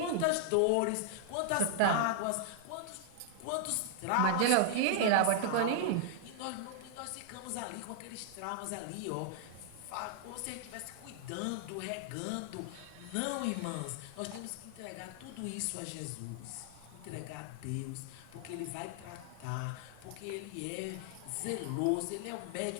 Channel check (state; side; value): different; both; correlation -0.01